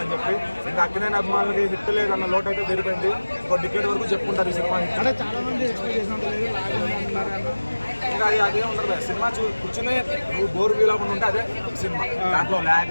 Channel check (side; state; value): both; inverted; correlation -1.00